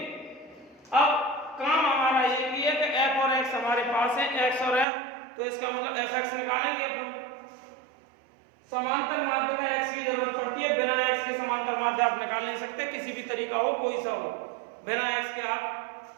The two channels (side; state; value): left; drops out; at 4.9 s